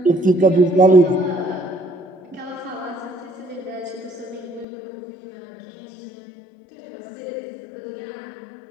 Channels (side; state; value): right; drops out; at 4.7 s